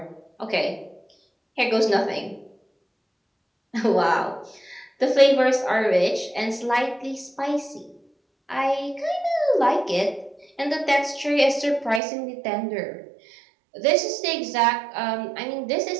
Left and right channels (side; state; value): left; drops out; at 12.0 s